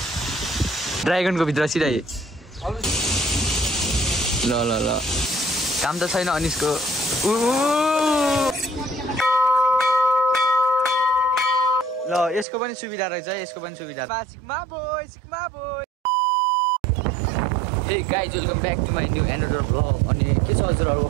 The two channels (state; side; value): drops out; left; at 12.5 s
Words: ड्राइगनको भित्र सिधै ल ल ल काम त छैन अनिसको ल यसको पनि सुविधा रहेछ यसको पनि सुविधा sigma boy Hey guys, welcome back to my new another vlog. अनि के छ हजुरहरुको